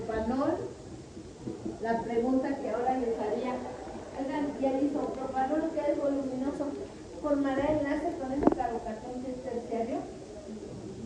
la pregunta que ahora les haría, oigan, ¿y el isopropanol, que es voluminoso, formará enlace con ese carbocatión que es terciario?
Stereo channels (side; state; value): both; identical; correlation 1.00